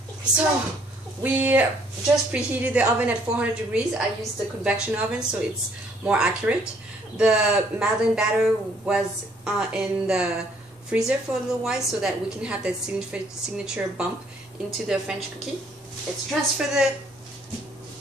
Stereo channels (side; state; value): both; normal; correlation 0.64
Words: So we just preheated the oven at 400 degrees. I used the convection oven so it's more accurate. The Madeleine batter was in the freezer for a little while so that we can have that signature bump into the French cookie. Let's transfer the